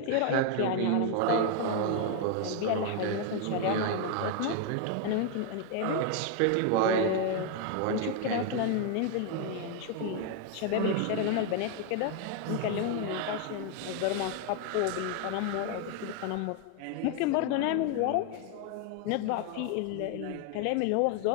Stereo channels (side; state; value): both; different; correlation 0.01